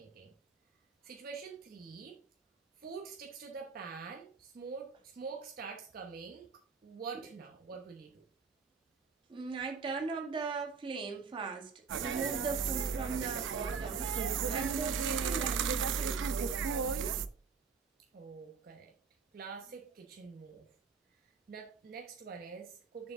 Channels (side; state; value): left; quieter; 5.6 dB